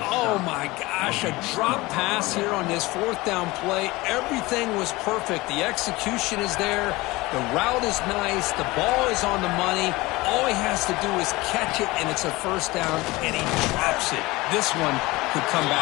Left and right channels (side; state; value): right; quieter; 21.3 dB